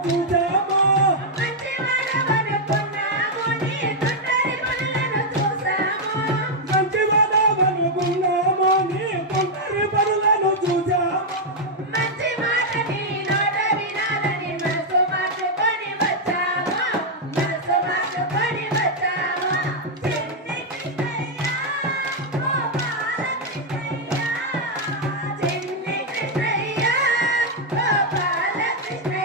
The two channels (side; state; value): both; normal; correlation -0.02